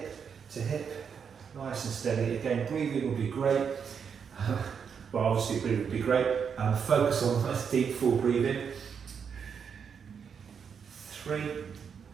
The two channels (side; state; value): left; quieter; 6.8 dB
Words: to hip, nice and steady. Again, breathing will be great. Well, obviously breathing would be great. Focus on nice deep full breathing. 3,